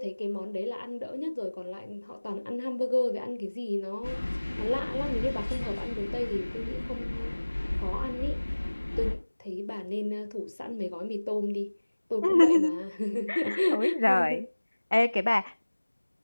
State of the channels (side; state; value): both; inverted; correlation -1.00